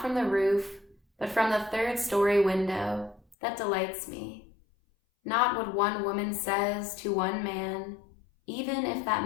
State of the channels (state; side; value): drops out; right; at 3.4 s